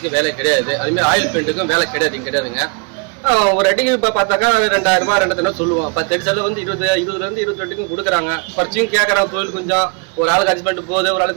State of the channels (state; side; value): quieter; left; 34.6 dB